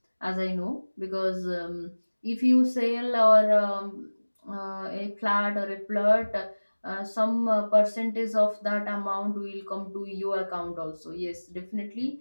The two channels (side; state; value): both; inverted; correlation -1.00